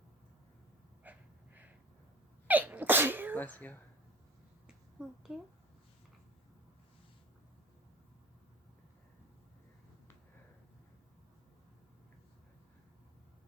Bless you. Thank you.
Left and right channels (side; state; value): both; normal; correlation 0.36